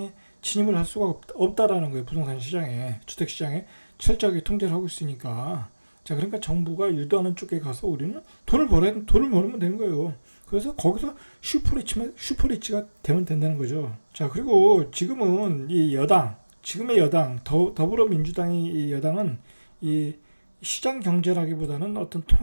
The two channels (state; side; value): inverted; both; correlation -1.00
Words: 진입을 할 수가 없다라는 거예요. 부동산 시장에, 주택 시장에 철저하게 통제를 하고 있으니까. 자, 그러니까 정부가 유도하는 쪽에 가서 우리는 돈을 벌면 되는 거예요. 그래서 거기서 슈퍼리치가 되면 된다는 거죠. 자, 그리고 지금은 지금의 여당, 더불어민주당이 이 여당은 이 시장 경제라기보다는 어떤